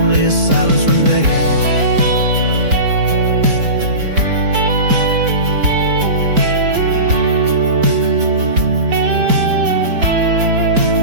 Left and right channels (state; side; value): late; left; 4.5 ms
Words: a silence remains.